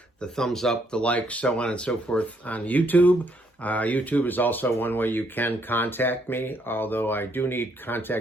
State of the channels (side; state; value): both; normal; correlation 0.71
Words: the thumbs up, the likes, so on and so forth on YouTube. YouTube is also one way you can contact me, although I do need